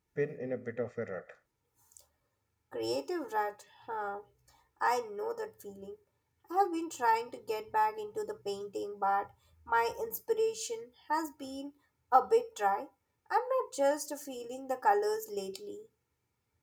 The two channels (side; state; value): both; identical; correlation 1.00